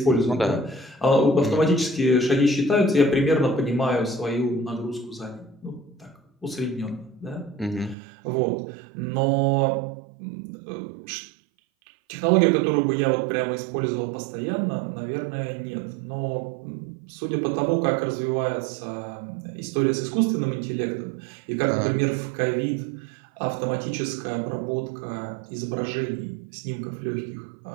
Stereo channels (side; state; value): left; drops out; at 8.0 s